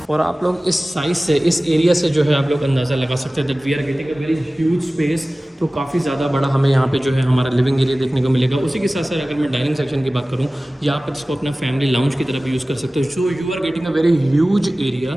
और आप लोग इस size से, इस एरिया से जो है आप लोग अंदाज़ा लगा सकते हैं that we are getting a very huge space. तो काफ़ी ज़्यादा बड़ा हमें यहाँ पे जो है हमारा लिविंग एरिया देखने को मिलेगा। उसी के साथ साथ अगर मैं डाइनिंग सेक्शन की बात करूँ, या आप इसको अपना फैमिली लाउंज की तरफ यूज़ कर सकते हो। So you are getting a very huge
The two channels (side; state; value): both; normal; correlation 0.97